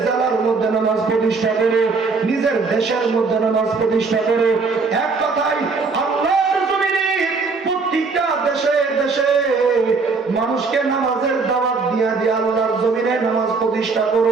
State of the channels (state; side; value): quieter; left; 4.4 dB